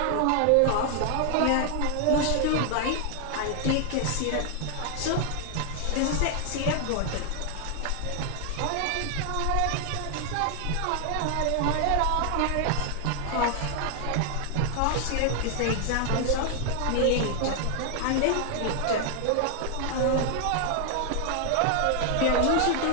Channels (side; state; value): both; different; correlation 0.00